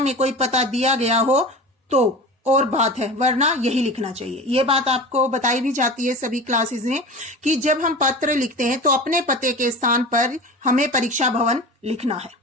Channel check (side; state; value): both; normal; correlation 0.33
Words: कोई पता दिया गया हो तो और बात है, वरना यही लिखना चाहिए। ये बात आपको बताई भी जाती है सभी क्लासेस में कि जब हम पत्र लिखते हैं तो अपने पते के स्थान पर हमें परीक्षा भवन लिखना है।